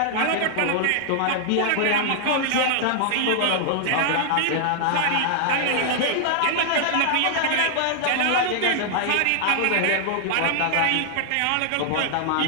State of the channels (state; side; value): different; both; correlation -0.01